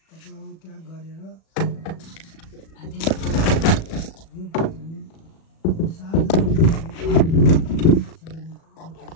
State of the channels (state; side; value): late; right; 37 ms